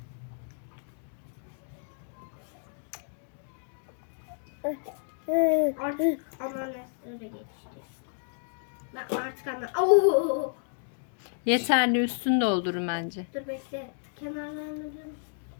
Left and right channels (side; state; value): right; silent; digital silence